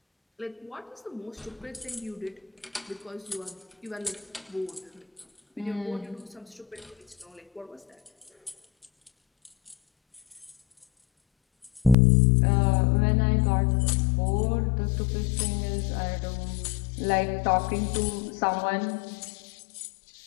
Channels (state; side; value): drops out; right; at 12.0 s